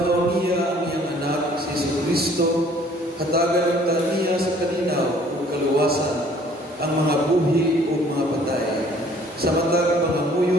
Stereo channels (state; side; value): normal; both; correlation 0.56